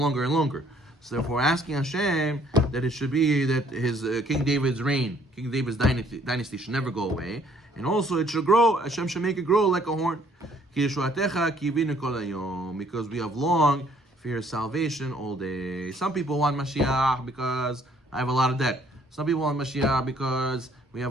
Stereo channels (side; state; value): both; normal; correlation 0.63